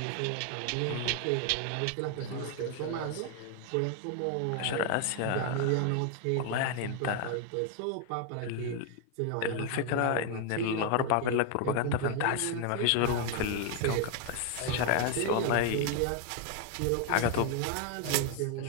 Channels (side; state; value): both; different; correlation 0.00